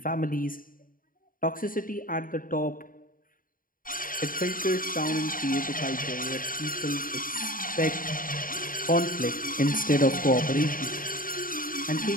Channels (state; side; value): late; right; 0.40 ms